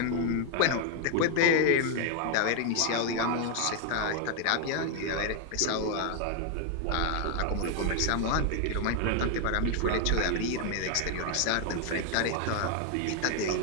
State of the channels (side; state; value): both; different; correlation 0.01